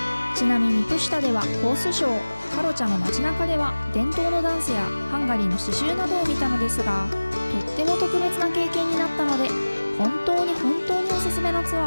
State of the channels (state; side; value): inverted; both; correlation -1.00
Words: ちなみにプシュタではホースショー、カロチャの街中では伝統のダンスやハンガリーの刺繍などを見たのですが、とっても特別な経験になったので、本当におすすめのツ